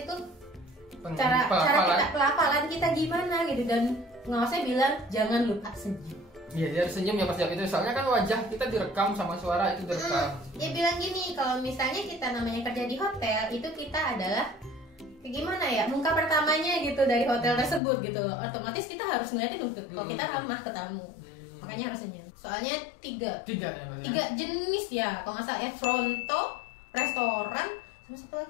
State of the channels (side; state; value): right; drops out; at 17.8 s